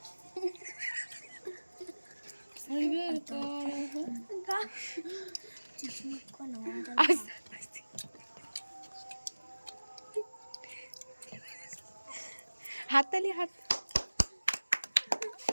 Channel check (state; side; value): inverted; both; correlation -1.00